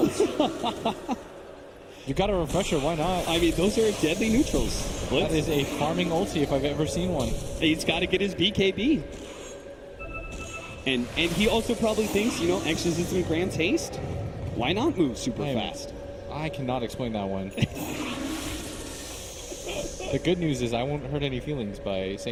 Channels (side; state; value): both; identical; correlation 1.00